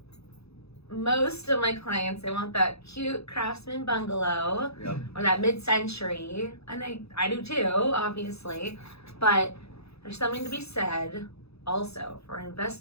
most of my clients, they want that cute craftsman bungalow or that mid-century, and I do too, obviously, but there's something to be said also for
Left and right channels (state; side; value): late; right; 0.79 ms